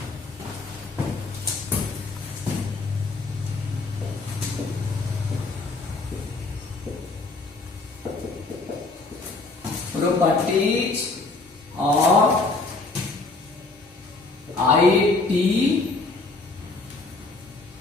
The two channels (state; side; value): quieter; right; 3.5 dB